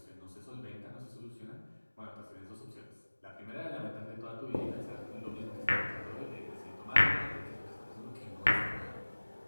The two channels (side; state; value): both; inverted; correlation -1.00